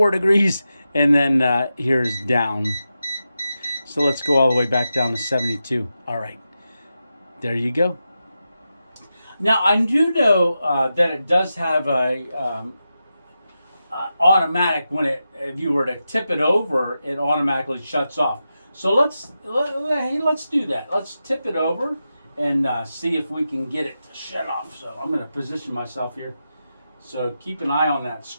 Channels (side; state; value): both; inverted; correlation -0.90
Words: degrees, and then here's down. So let's go all the way back down to 72. All right, there you go. Now I do know that it does have a automatic, if you were to tip it over, it automatically shuts off. So let's do that. Let's tip it over and see if we can get it to shut off. So I'm going to position myself here. So keep an eye on that